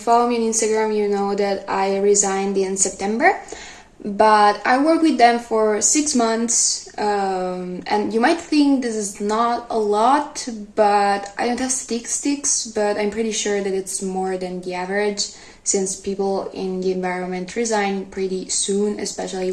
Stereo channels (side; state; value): both; identical; correlation 1.00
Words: me on Instagram, you know that I resigned in September, but I worked with them for 6 months, and you might think this is not a lot, but I don't have statistics, but I'm pretty sure that it's more than the average since people in the environment resign pretty soon, especially